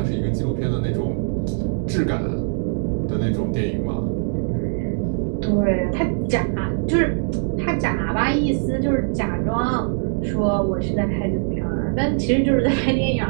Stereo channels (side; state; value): left; silent; digital silence